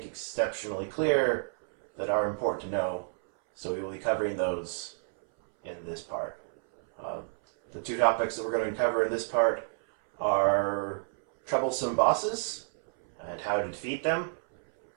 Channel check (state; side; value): silent; left; 58 dB below the other